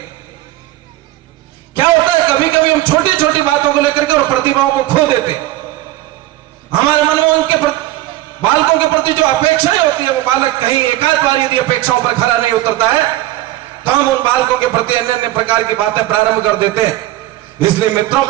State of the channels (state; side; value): quieter; left; 15.8 dB